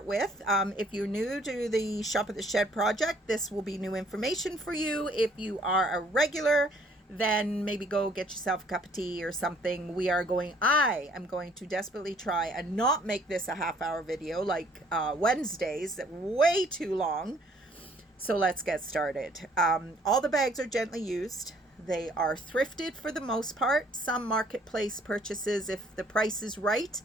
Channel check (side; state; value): both; normal; correlation 0.61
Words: with. If you're new to the Shop of the Shed project, this will be new information for you. If you are a regular, then maybe go get yourself a cup of tea or something. I am going to desperately try and not make this a half-hour video like Wednesdays, way too long. So let's get started. All the bags are gently used. They are thrifted for the most part. Some marketplace purchases if the price is right.